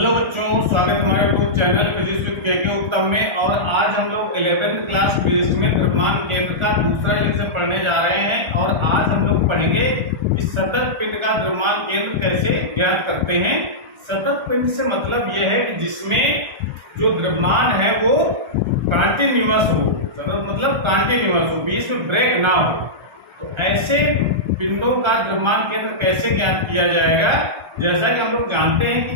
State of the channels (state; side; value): late; left; 1.3 ms